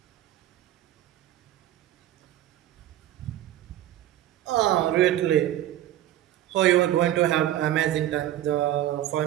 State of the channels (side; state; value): left; quieter; 13.3 dB